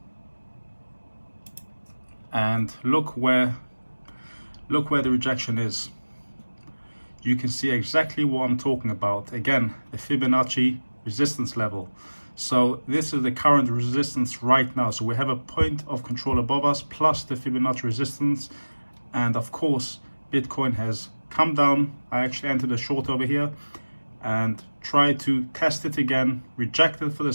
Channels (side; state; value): both; inverted; correlation -1.00